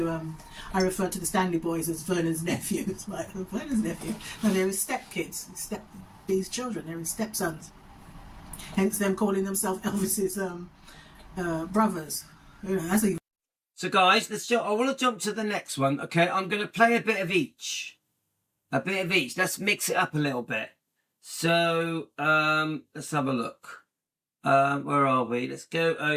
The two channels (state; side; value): identical; both; correlation 1.00